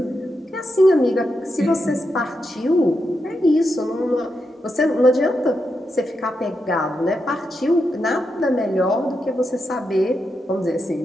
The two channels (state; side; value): normal; both; correlation 0.85